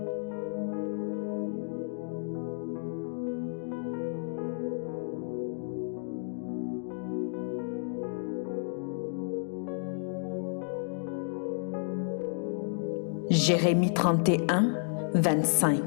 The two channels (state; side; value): silent; right; digital silence